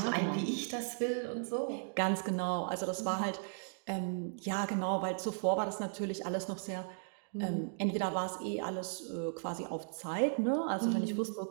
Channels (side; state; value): left; silent; digital silence